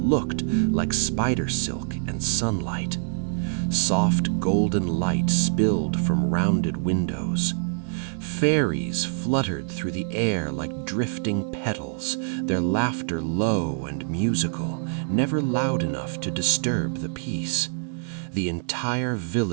looked like spider silk and sunlight. Soft golden light spilled from rounded windows. Fairies fluttered through the air like drifting petals, their laughter low and musical, never loud enough to disturb the peace. The entire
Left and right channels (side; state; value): left; silent; digital silence